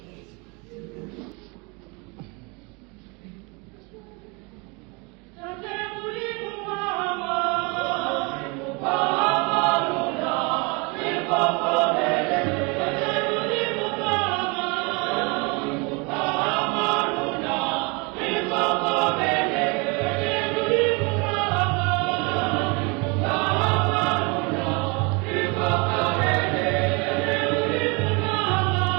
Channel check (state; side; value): quieter; left; 29.6 dB